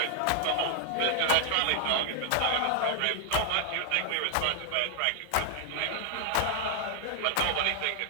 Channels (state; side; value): different; both; correlation 0.00